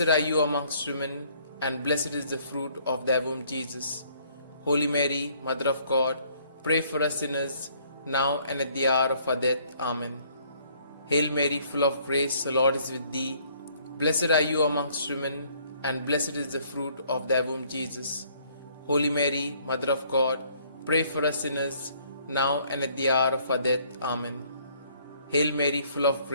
are you amongst women, and blessed is the fruit of thy womb, Jesus. Holy Mary, Mother of God, pray for us sinners, now and at the hour of our death. Amen. Hail Mary, full of grace, the Lord is with thee. Blessed are you amongst women, and blessed is the fruit of thy womb, Jesus. Holy Mary, Mother of God, pray for us sinners, now and at the hour of our death. Amen. Hail Mary, full of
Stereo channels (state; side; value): inverted; both; correlation -0.63